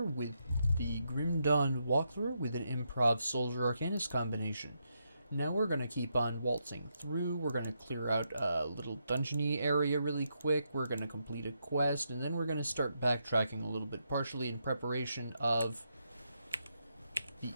with the Grim Dawn walkthrough with an Improv Soldier Arcanist combination. Now we're going to keep on waltzing through, we're going to clear out a little dungeony area really quick, we're going to complete a quest, and then we're going to start backtracking a little bit, partially in preparation of the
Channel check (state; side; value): inverted; both; correlation -0.81